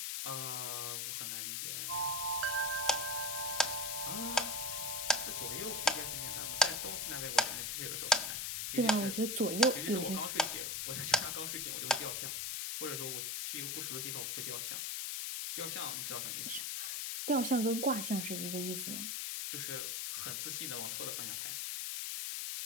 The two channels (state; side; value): noise; left; hiss, 1 dB below the sound